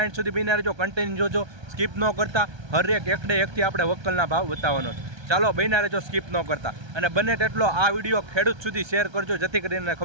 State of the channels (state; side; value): late; left; 1.3 ms